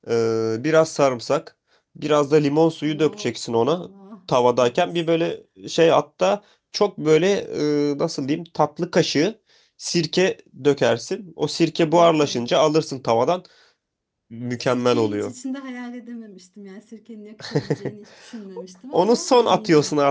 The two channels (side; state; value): both; identical; correlation 1.00